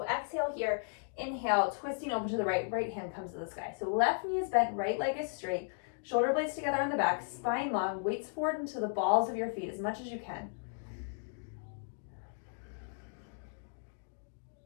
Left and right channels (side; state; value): right; silent; digital silence